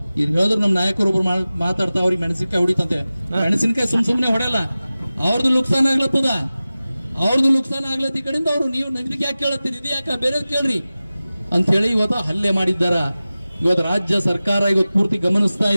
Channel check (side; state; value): both; inverted; correlation -0.96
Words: ಈಗ ಹೇಳಿದ್ರು ನಮ್ಮ ನಾಯಕರೊಬ್ರು ಮಾತಾಡ್ತಾ ಅವ್ರಿಗೆ ಮೆಣಸಿನಕಾಯಿ ಹೊಡಿತಂತೆ. ಮೆಣಸಿನಕಾಯಿ ಸುಮ್ನೆ ಹೊಡೆಯಲ್ಲ, ಅವ್ರದ್ದು ನುಕ್ಸಾನ ಆಗ್ಲತ್ತದ. ಅವ್ರದ್ದು ನುಕ್ಸಾನ ಆಗ್ಲತ್ತ ಈ ಕಡೆಯಿಂದ ಅವರು ನೀವು ಇದಕ್ಕೆ ಯಾಕೆ ಕೇಳತ್ತೀರಿ, ಇದು ಯಾಕೆ ಬೇರೆ ಕೇಳ್ರಿ ಅಂತ ಹೇಳಿ ಇವತ್ತು ಹಲ್ಲೆ ಮಾಡಿದ್ದಾರ. ಇವತ್ತು ರಾಜ್ಯ ಸರ್ಕಾರ ಇವತ್ತು ಪೂರ್ತಿ ಗಮನಿಸ್ತಾ